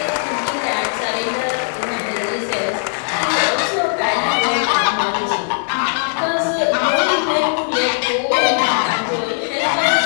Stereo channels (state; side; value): silent; right; 59 dB below the other